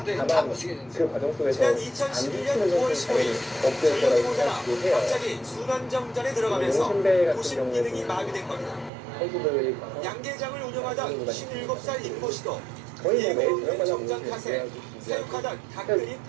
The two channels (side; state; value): left; drops out; at 8.9 s